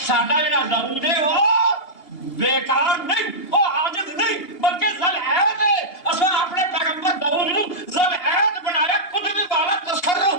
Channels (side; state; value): right; late; 2.8 ms